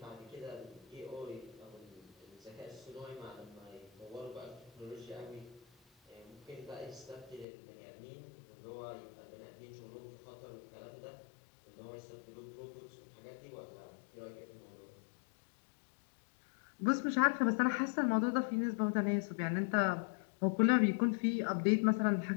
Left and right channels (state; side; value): drops out; right; at 7.5 s